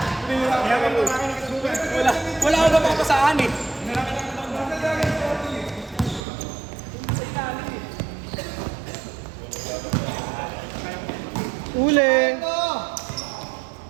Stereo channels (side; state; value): left; drops out; at 6.2 s